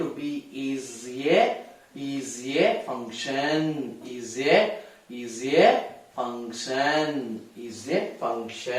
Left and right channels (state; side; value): identical; both; correlation 1.00